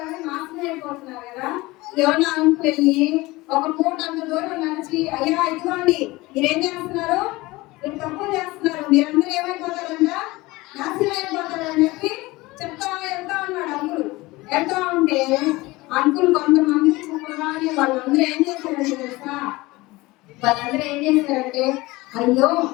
నాశనం అయిపోతున్నారు కదా. యోనా అంకులు వెళ్ళి ఒక పూట అంత దూరం నడిచి, అయ్యా ఇదిగోండి, మీరేం చేస్తున్నారు? మీరు తప్పులు చేస్తున్నారు, మీరందరూ ఏమైపోతారంట? నాశనం అయిపోతారని చెప్పి చెప్తా వెళ్తా ఉన్నాడు అంకుల్. వెళ్తా ఉంటే అంకుల్ కొంతమందికి చెప్పగానే వాళ్ళందరూ ఏం చేశారంటే తెలుసా, అయ్యో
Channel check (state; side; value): quieter; right; 20.9 dB